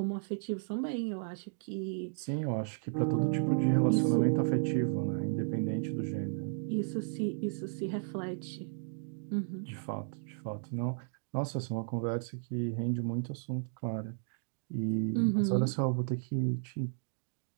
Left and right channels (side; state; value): left; silent; digital silence